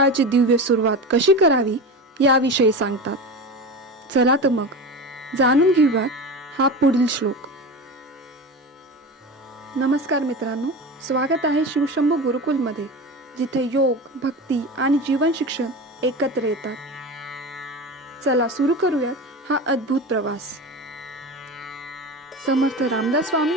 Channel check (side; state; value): both; normal; correlation 0.27